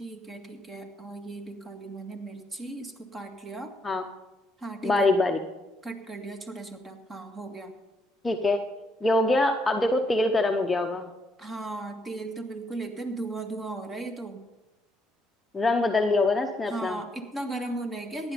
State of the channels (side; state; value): both; normal; correlation 0.74